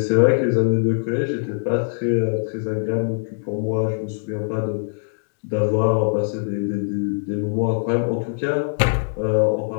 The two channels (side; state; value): right; silent; digital silence